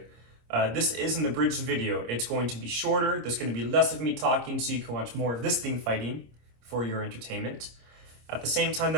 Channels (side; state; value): left; late; 26 ms